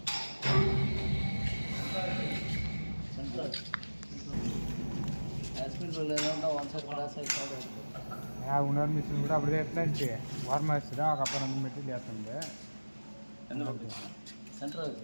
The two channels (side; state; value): both; inverted; correlation -1.00